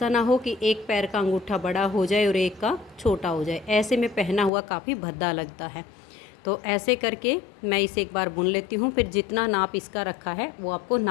ना हो कि एक पैर का अंगूठा बड़ा हो जाए और एक का छोटा हो जाए, ऐसे में पहना हुआ काफ़ी भद्दा लगता है। तो ऐसे करके मैं इसे एक बार बुन लेती हूँ, फिर जितना नाप इसका रखा है वो आपको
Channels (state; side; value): drops out; right; at 4.5 s